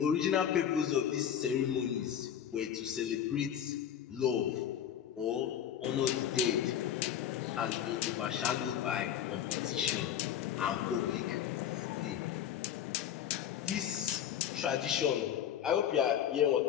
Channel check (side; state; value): right; quieter; 9.7 dB